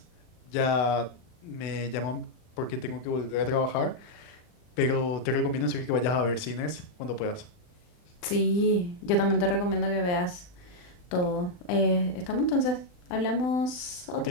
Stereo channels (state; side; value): late; right; 39 ms